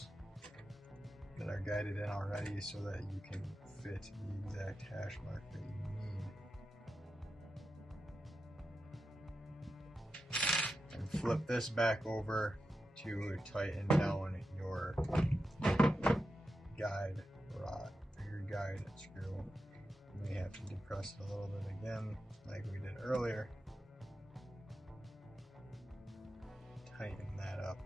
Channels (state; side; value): normal; both; correlation 0.89